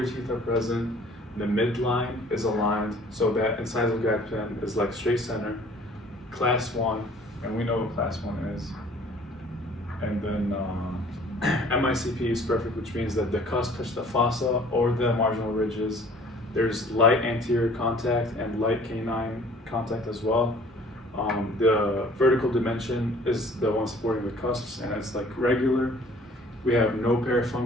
teeth are present, the midline is aligned so that incisal guide pen is like straight center. Class 1, and we know what class 1 is. And then MICP is perfect, which means that the cusp touch the fossa or the marginal ridges. There's light anterior contact and light canine contact as well. The vertical dimension is the one supporting the cusps, and it's like regular. We have no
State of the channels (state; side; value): normal; both; correlation 0.53